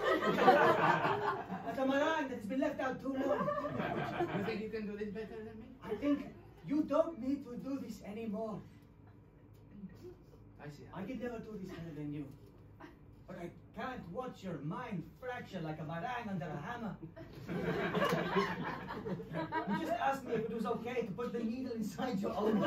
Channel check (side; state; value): both; identical; correlation 1.00